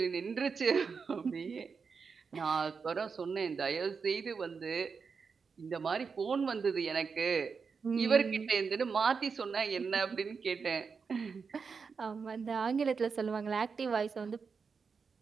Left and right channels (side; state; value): left; quieter; 5.4 dB